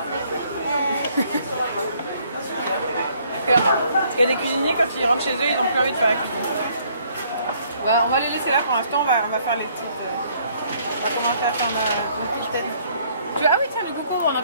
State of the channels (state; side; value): inverted; both; correlation -0.64